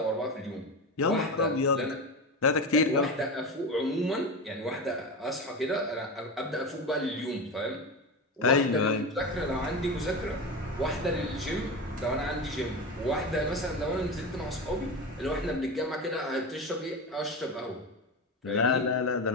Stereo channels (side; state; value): both; normal; correlation 0.22